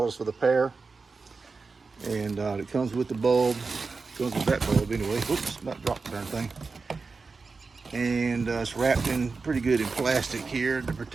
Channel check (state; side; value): quieter; left; 4.4 dB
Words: for the pair. And it comes with the bulb. It comes with that bulb anyway. Whoops, not dropped the darn thing. And it's wrapped in pretty good in plastic here to